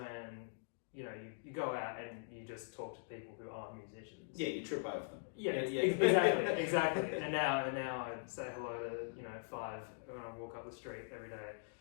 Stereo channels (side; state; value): right; silent; digital silence